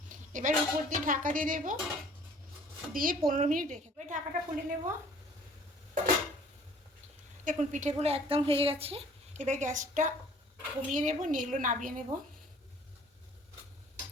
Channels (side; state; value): both; normal; correlation 0.53